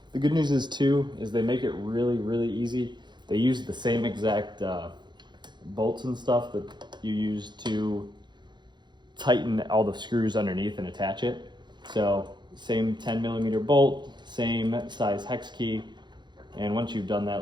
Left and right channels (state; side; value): late; left; 0.21 ms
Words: The good news is they make it really, really easy. They use the same exact bolts and stuff that you use to tighten all the screws underneath and attach it. So same 10mm bolt, same size hex key. And once you've done